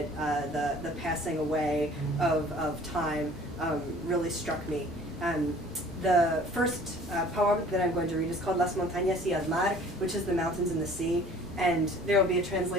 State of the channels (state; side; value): normal; both; correlation 0.51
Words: the passing away of time, really struck me. The first poem that I'm going to read is called Las Montañas y el Mar, which is the mountains and the sea, and there will be a